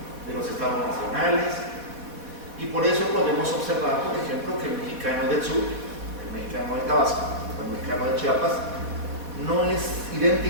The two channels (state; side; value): late; left; 4.1 ms